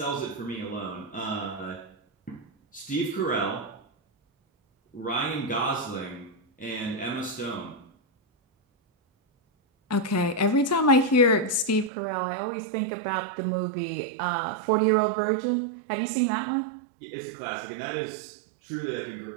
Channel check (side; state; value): left; drops out; at 11.9 s